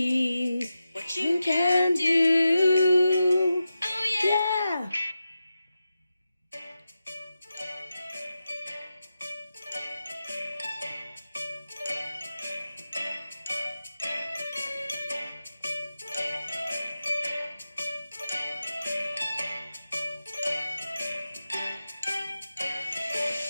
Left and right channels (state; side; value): inverted; both; correlation -0.91